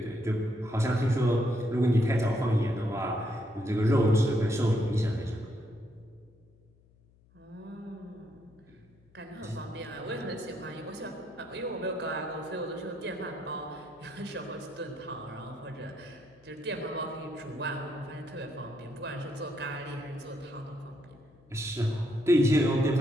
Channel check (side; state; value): left; noise; hum, 30 dB below the sound